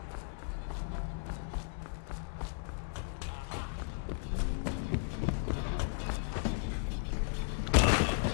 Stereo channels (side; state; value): right; silent; digital silence